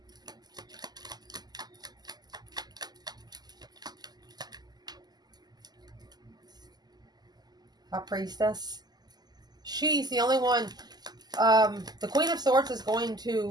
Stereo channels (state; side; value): late; left; 0.20 ms